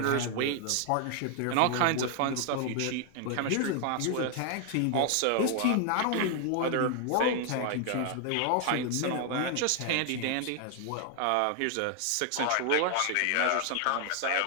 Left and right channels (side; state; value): both; different; correlation 0.00